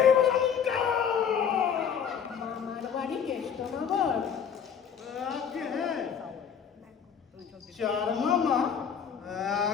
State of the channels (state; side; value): quieter; right; 7.5 dB